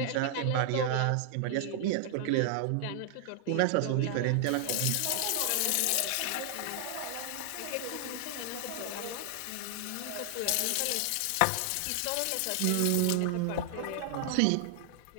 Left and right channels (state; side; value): different; both; correlation 0.00